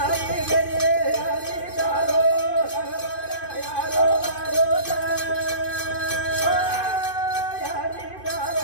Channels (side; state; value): right; late; 2.5 ms